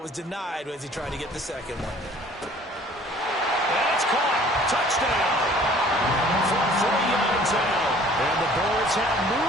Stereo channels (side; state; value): both; normal; correlation 0.53